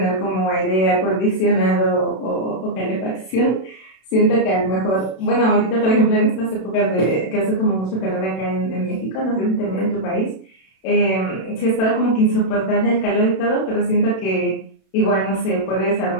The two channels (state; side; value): late; right; 32 ms